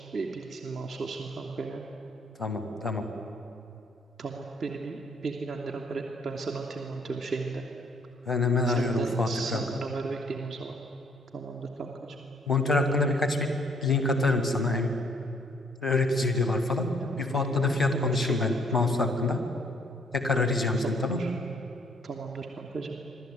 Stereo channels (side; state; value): both; normal; correlation 0.64